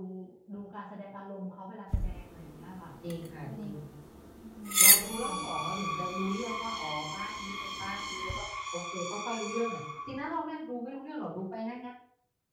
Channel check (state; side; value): identical; both; correlation 1.00